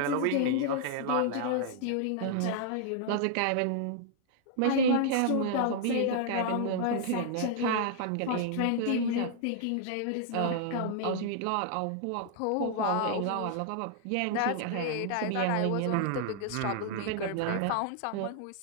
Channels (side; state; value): both; different; correlation -0.01